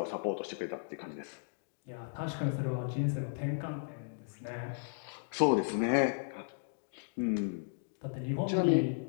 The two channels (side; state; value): right; silent; digital silence